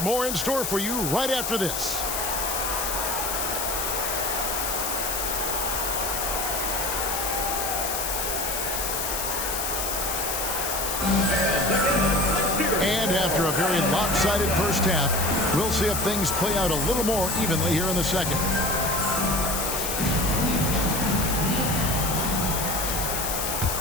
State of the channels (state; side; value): noise; left; hiss, 2 dB below the sound